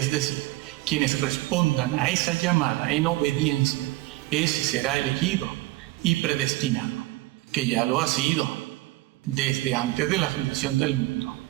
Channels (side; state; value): left; quieter; 19.4 dB